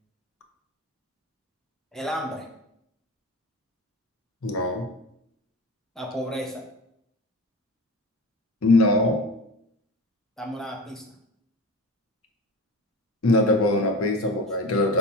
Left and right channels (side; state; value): both; normal; correlation 0.32